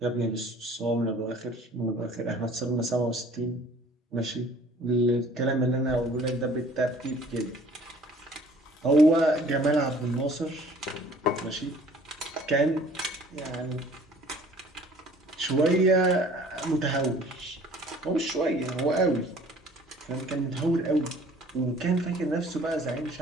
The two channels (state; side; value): normal; both; correlation 0.52